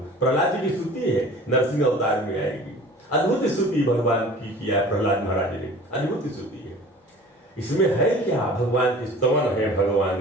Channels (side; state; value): both; normal; correlation 0.44